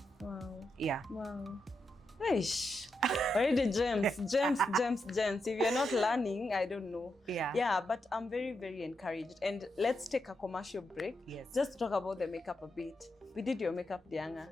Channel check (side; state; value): both; normal; correlation 0.84